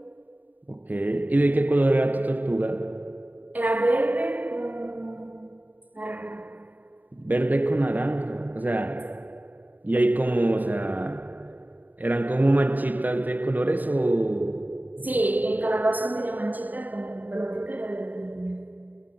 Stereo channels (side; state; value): left; late; 0.083 ms